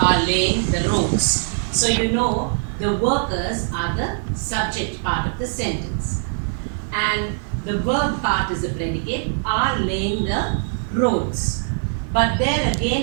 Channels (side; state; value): left; silent; digital silence